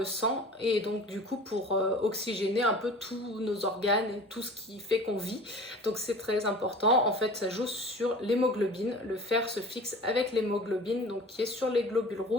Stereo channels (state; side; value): normal; both; correlation 0.41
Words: sang et donc du coup pour oxygéner un peu tous nos organes et tout ce qui fait qu'on vit. Donc c'est très important. En fait, ça joue sur l'hémoglobine. Le fer se fixe avec l'hémoglobine, donc qui est sur les globules